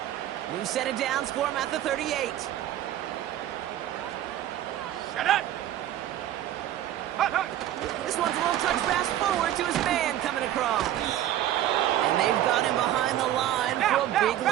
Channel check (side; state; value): left; quieter; 12.5 dB